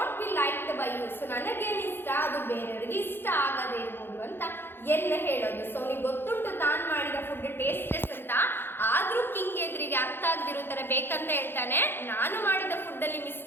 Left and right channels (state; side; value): late; right; 0.10 ms